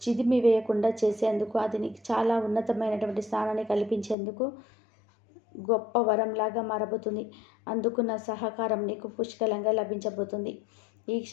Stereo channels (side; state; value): right; drops out; at 4.2 s